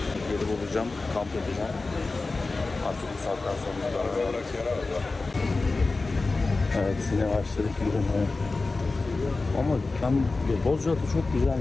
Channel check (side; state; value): right; quieter; 3.6 dB